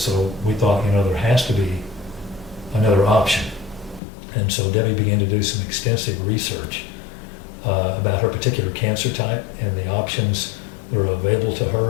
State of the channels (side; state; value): right; drops out; at 4.0 s